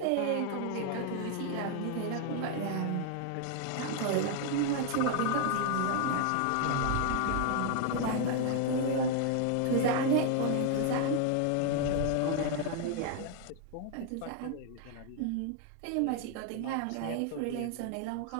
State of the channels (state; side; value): different; both; correlation 0.00